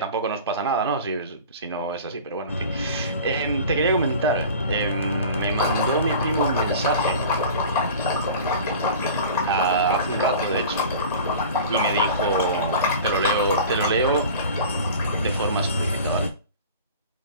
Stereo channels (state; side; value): inverted; both; correlation -0.39